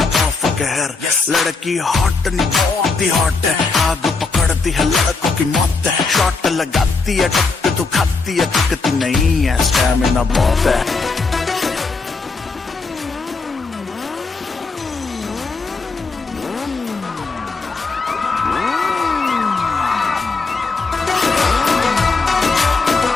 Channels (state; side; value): quieter; right; 4.1 dB